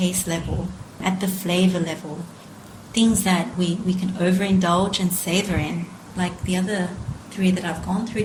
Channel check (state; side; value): identical; both; correlation 1.00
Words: level, at the flavor level. Things that we can overindulge and savor in, like the other three that I've gone through.